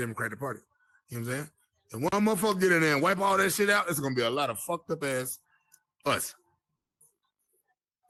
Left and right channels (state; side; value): identical; both; correlation 1.00